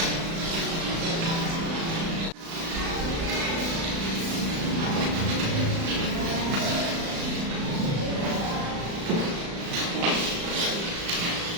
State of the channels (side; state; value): left; late; 35 ms